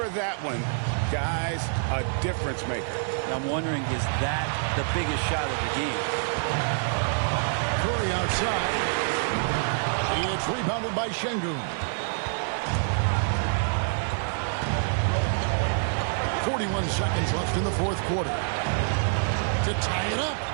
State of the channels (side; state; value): left; silent; 56 dB below the other